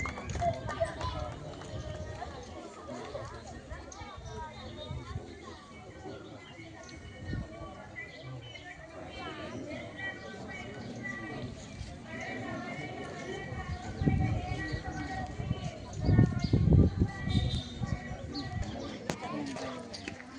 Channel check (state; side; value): identical; both; correlation 1.00